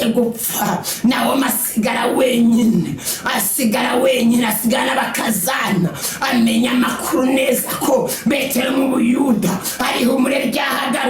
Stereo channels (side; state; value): both; identical; correlation 1.00